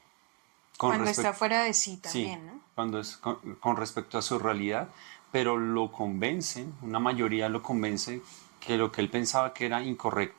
Cuando está fuera de sí también, sí, ¿no? cuando es con respecto a su realidad, pero lo convence, una mayoría lo convence que lo que él pensaba que era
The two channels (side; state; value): left; quieter; 32.1 dB